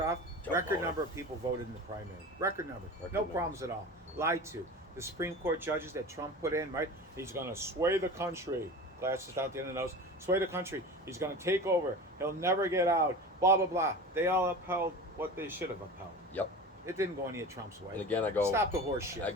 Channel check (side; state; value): both; normal; correlation 0.33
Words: Jump Record on. number of people voted in the primary. Record number. Record No number. problems at all. Lied to. The Supreme Court judges that Trump put in, right? He's going to sway the country. Glasses out the end of the nose. Sway the country. He's going to take over. He'll never get out. Blah, blah, blah. They all upheld what they should have upheld. Yep. It didn't go any of Trump's way. And again, I go. Stop the horse shit. I